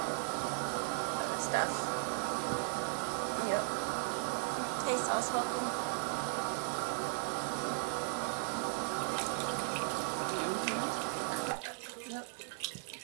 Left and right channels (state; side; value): silent; left; 53 dB below the other